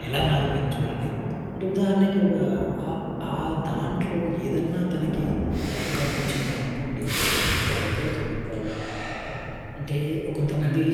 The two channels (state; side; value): identical; both; correlation 1.00